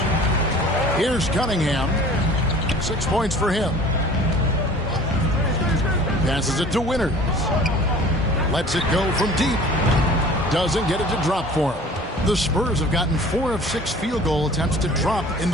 Here's Cunningham. 6 points for him. Passes it to Winters. Lets it go from deep. Doesn't get it to drop for him. The Spurs have gotten 4 of 6 field goal attempts to drop in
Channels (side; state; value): both; normal; correlation 0.46